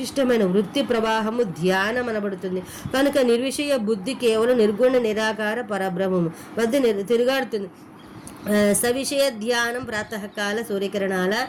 వృత్తి ప్రవాహము ధ్యానం అనబడుతుంది. కనుక నిర్విషయ బుద్ధి కేవలం నిర్గుణ నిరాకార పరబ్రహ్మము వద్ద తిరుగాడుతుంది. సవిషయ ధ్యానం ప్రాతకాల సూర్యకిరణాల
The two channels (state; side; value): identical; both; correlation 1.00